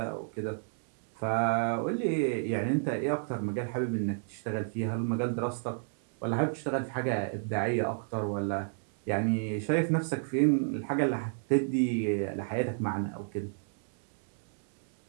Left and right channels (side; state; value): left; silent; digital silence